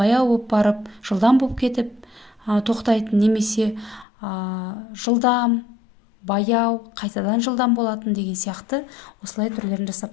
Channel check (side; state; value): right; drops out; at 4.0 s